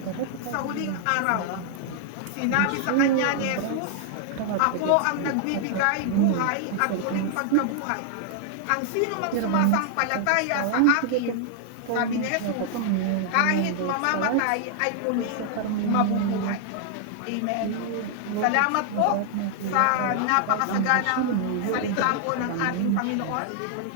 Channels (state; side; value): different; both; correlation -0.01